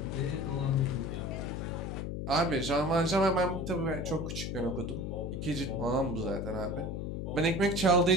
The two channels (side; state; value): left; noise; hum, 4 dB below the sound